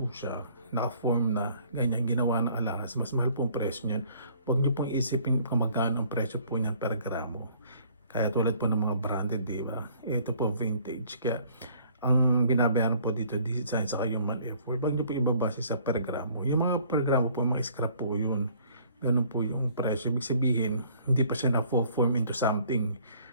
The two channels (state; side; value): inverted; both; correlation -0.58